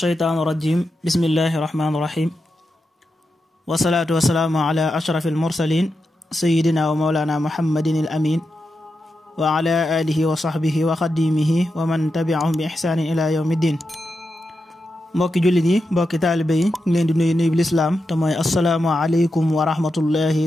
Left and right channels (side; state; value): both; normal; correlation 0.88